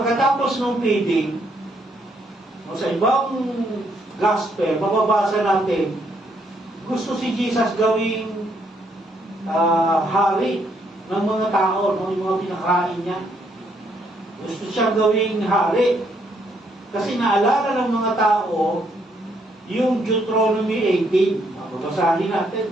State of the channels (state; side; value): normal; both; correlation 0.72